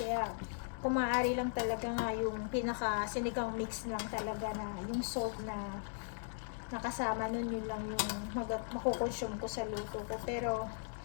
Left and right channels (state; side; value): silent; right; digital silence